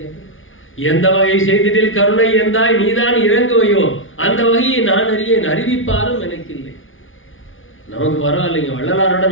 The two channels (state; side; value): late; right; 0.58 ms